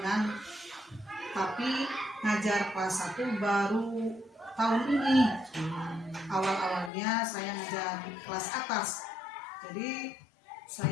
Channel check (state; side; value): drops out; right; at 6.9 s